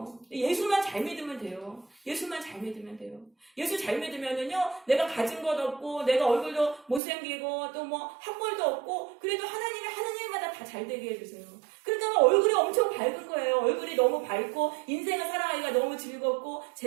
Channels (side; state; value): left; drops out; at 7.0 s